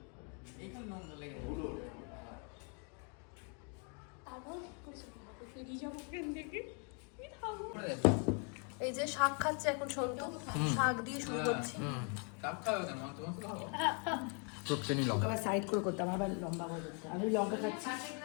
একটু নোংরা লেগে এই যে শাক খাচ্ছে এখন সন্তু, শাক দিয়ে শুরু করছি। কাপ খাবে কেন? তোমার তো খাবো। আবার সাইড করে করতাম, আবার লম্বা করে করতাম। আমি লঙ্কা খাচ্ছি।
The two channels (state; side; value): quieter; right; 38.5 dB